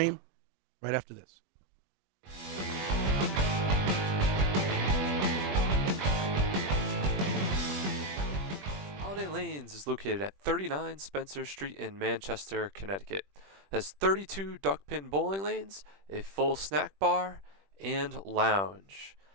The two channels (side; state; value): left; late; 21 ms